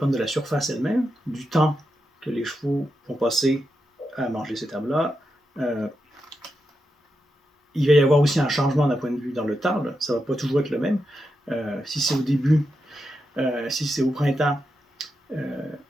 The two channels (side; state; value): both; normal; correlation 0.87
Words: de la surface elle-même, du temps que les chevaux vont passer à manger cette herbe-là. Il va y avoir aussi un changement d'un point de vue dans le temps. Là. Ça ne va pas toujours être le même. Si c'est au début, si c'est au printemps,